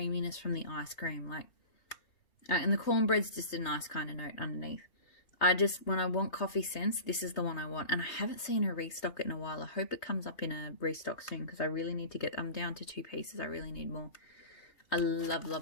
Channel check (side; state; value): right; late; 3.2 ms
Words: from the ice cream, and the cornbread's just a nice kind of note underneath. When I want coffee scents, this is the one I want. And I haven't seen her restock it in a while. I hope it comes up in a restock soon, because I really need to get, I'm down to 2 pieces. I really need more. I love,